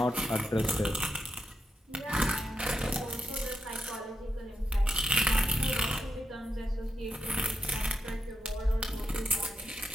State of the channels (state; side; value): normal; both; correlation 0.86